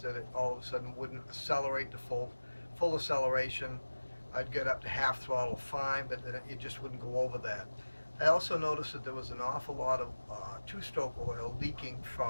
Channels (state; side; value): inverted; both; correlation -1.00